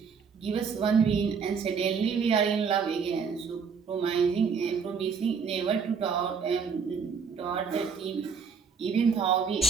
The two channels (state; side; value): quieter; left; 5.9 dB